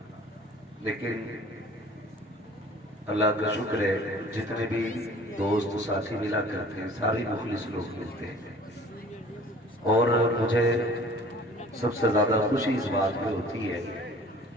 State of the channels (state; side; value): normal; both; correlation 0.48